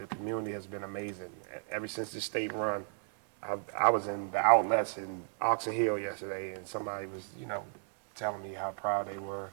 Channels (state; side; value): silent; left; 55 dB below the other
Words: community has been amazing. Ever since the state run, I was in the outlets in Oxon Hill yesterday, and somebody was, telling me how proud they were.